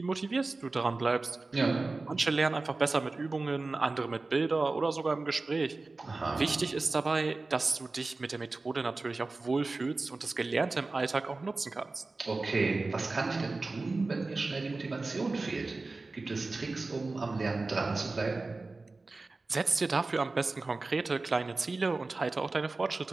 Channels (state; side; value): quieter; left; 3.5 dB